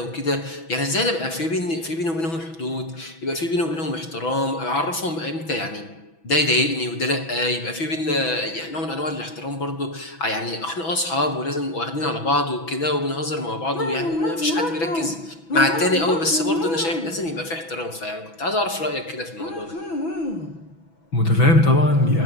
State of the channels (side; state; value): right; late; 6.1 ms